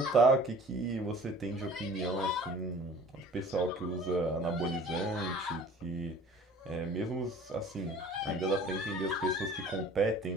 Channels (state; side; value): normal; both; correlation 0.48